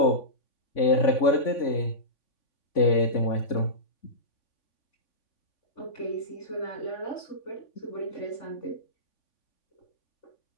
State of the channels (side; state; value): right; late; 3.5 ms